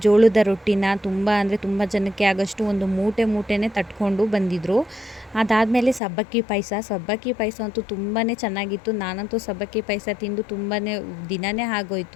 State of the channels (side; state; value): right; drops out; at 6.0 s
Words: ಜೋಳದ ರೊಟ್ಟಿನ ತುಂಬ ಜನಕ್ಕೆ ಆಗೋಷ್ಟು ಒಂದು ಮೂಟೆನೇ ತಟ್ಕೊಂಡು ಬಂದಿದ್ದರು. ಅದಾದಮೇಲೆ ಸಬ್ಬಕ್ಕಿ ಪಾಯಸ ಅಂತೂ ತುಂಬಾ ಚೆನ್ನಾಗಿತ್ತು. ನಾನಂತೂ ಸಬ್ಬಕ್ಕಿ ಪಾಯಸ ತಿಂದು ತುಂಬಾ ದಿನವೇ